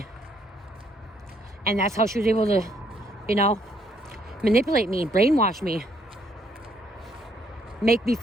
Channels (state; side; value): normal; both; correlation 0.69